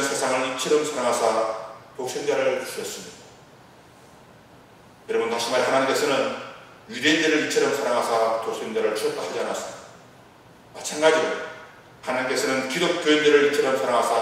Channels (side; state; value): both; identical; correlation 1.00